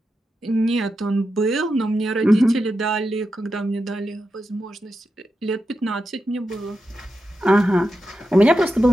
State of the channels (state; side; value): normal; both; correlation 0.88